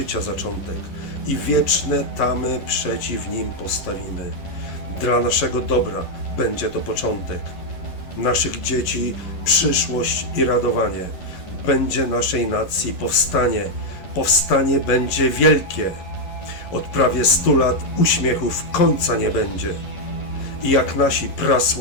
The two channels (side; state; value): right; late; 11 ms